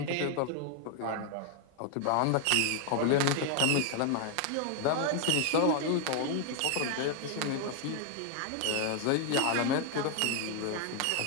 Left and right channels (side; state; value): both; different; correlation 0.00